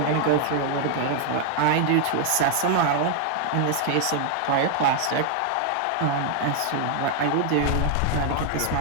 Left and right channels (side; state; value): both; different; correlation 0.00